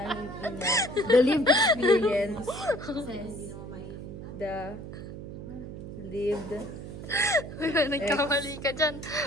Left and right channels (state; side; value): noise; right; hum, 10 dB below the sound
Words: ina. The lived experience. The lived Nagkamali ka dyan.